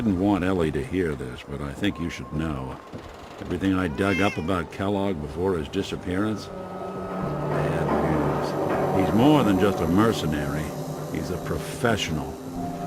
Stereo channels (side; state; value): both; identical; correlation 1.00